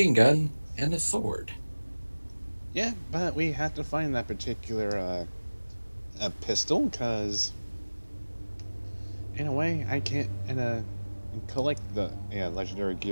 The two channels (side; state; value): both; inverted; correlation -1.00